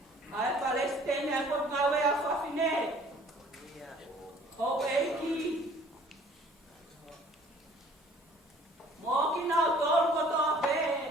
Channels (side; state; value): both; normal; correlation 0.54